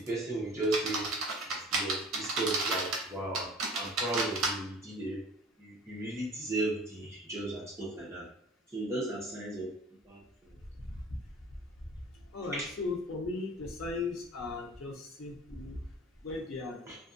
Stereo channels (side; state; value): both; normal; correlation 0.44